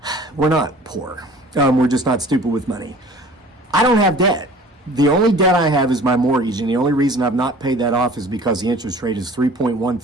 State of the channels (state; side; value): normal; both; correlation 0.47